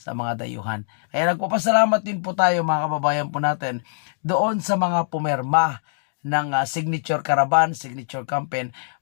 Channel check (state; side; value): silent; right; digital silence